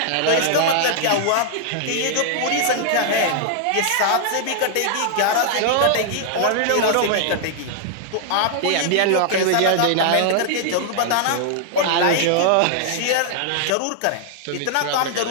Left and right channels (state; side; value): different; both; correlation -0.01